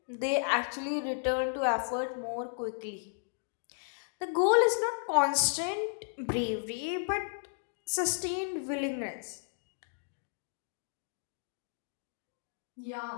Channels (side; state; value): right; silent; digital silence